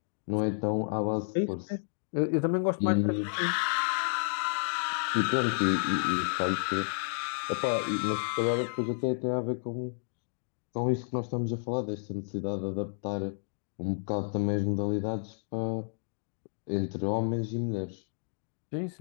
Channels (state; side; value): silent; right; digital silence